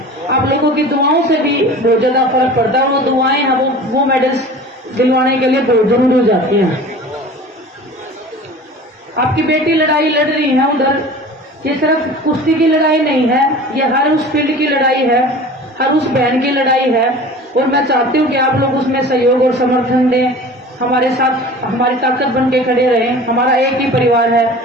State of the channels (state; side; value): normal; both; correlation 0.40